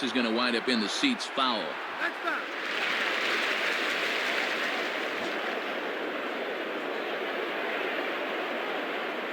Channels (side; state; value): both; identical; correlation 1.00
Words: is going to wind up in the seats foul.